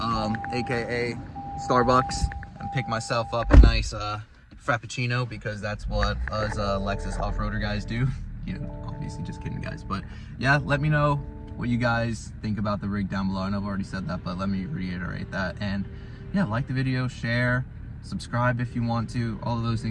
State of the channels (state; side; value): identical; both; correlation 1.00